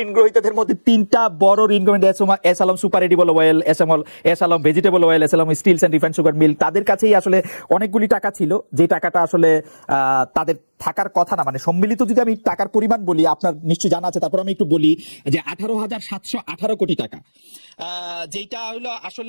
ঋণ গ্রহীতাদের মধ্যে 3টা বড় ঋণ গ্রহীতা S Alam super edible oil, S Alam vegetable oil, S Alam steels and refined sugar mill, তাদের কাছেই আসলে অনেকগুলি টাকা ছিল যে টাকাটা আসলে তাদের থাকার কথা না। মানে সম্মিলিত যদি আমি টাকার পরিমাণ বলি, আপনার নিশ্চয়ই জানা আছে, তারপর আমি একটু বলি যে 18,718 কোটি টাকা, যেটা হলো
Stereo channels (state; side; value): inverted; both; correlation -1.00